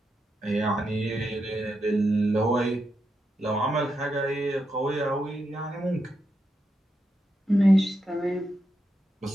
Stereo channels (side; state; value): both; normal; correlation 0.85